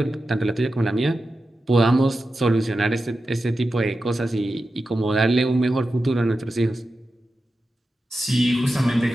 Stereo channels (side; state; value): both; normal; correlation 0.91